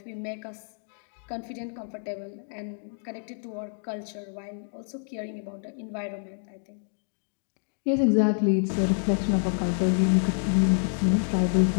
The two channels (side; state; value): right; silent; 58 dB below the other